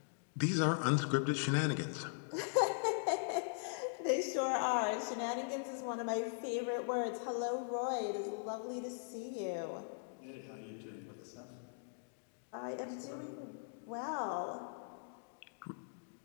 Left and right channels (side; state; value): right; silent; digital silence